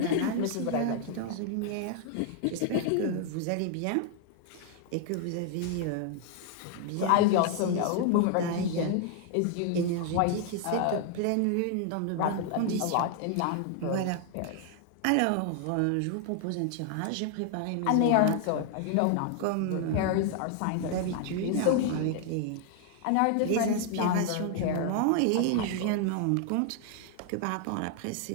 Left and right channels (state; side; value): different; both; correlation 0.00